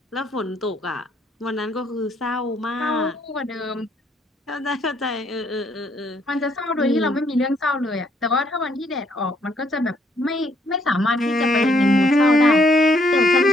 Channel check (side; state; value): both; normal; correlation 0.69